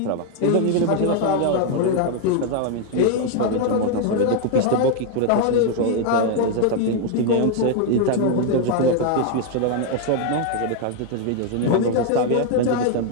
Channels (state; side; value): different; both; correlation 0.01